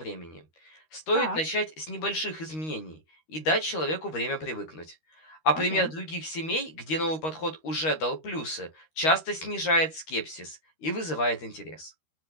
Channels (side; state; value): right; late; 13 ms